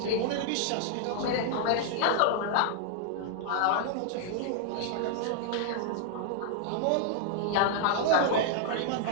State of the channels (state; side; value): different; both; correlation -0.01